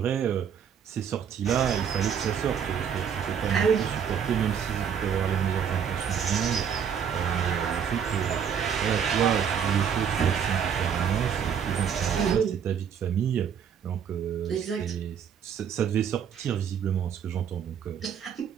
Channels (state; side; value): quieter; left; 7.8 dB